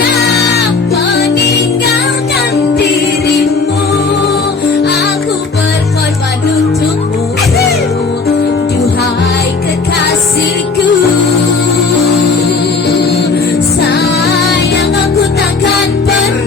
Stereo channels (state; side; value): quieter; right; 4.4 dB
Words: meninggalkan dirimu. Aku berkorban untukmu, duhai kekasihku. Sayang aku takkan